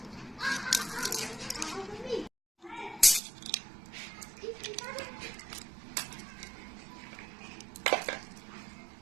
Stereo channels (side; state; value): left; drops out; at 3.2 s